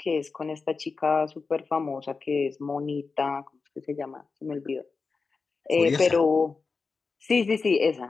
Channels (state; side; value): quieter; right; 4.5 dB